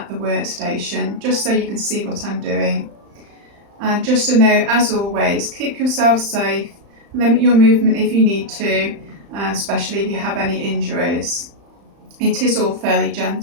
the workstation, just so you can see what I'm doing. And just a note, as always, keep yourself safe, limit your movement if you need to, especially if you have any injuries. It is all fairly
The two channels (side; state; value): left; late; 35 ms